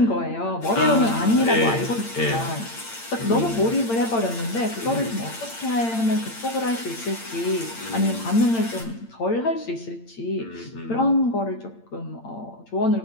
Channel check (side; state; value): right; late; 8.8 ms